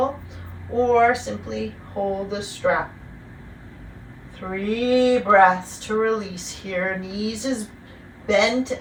or simply hold the strap. 3 breaths to release here. Knees as bent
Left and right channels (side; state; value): both; identical; correlation 1.00